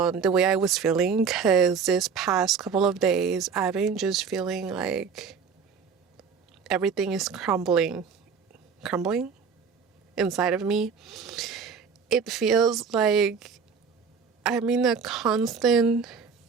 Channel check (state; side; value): quieter; left; 6.0 dB